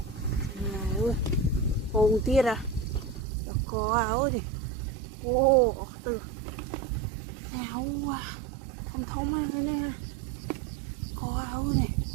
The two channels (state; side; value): drops out; left; at 3.2 s